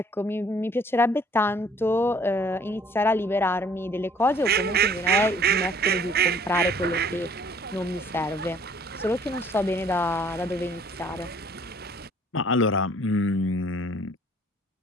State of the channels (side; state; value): both; normal; correlation 0.58